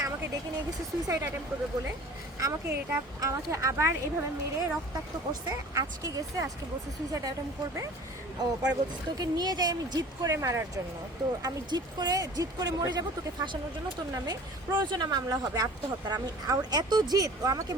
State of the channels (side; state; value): both; normal; correlation 0.44